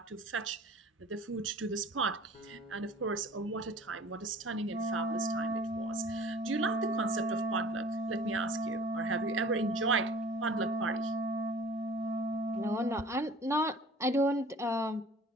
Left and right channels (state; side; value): normal; both; correlation 0.47